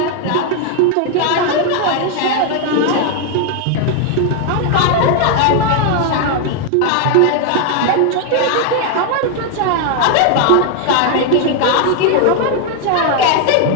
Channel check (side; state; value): both; different; correlation 0.00